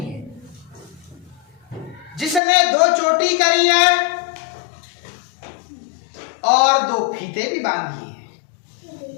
है, जिसने 2 चोटी करी है और 2 फीते भी बांधी है,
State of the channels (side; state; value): right; drops out; at 2.4 s